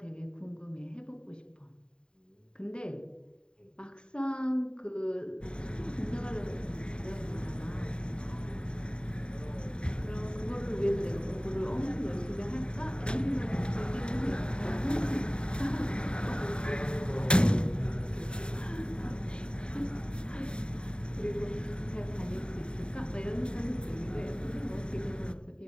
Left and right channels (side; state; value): right; late; 0.051 ms